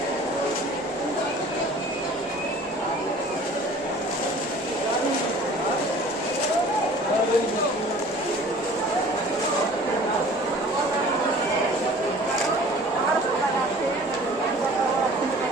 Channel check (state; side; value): normal; both; correlation 0.47